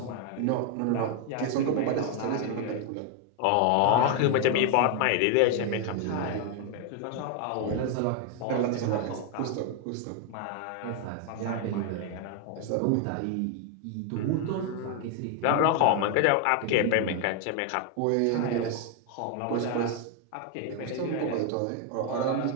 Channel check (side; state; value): both; different; correlation 0.00